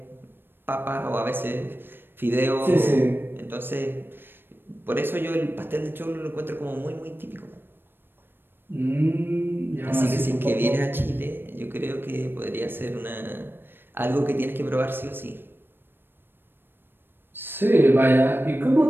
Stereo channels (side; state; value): left; late; 0.099 ms